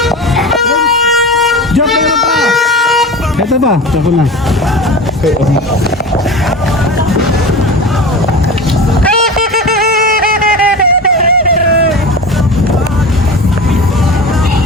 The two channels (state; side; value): normal; both; correlation 0.31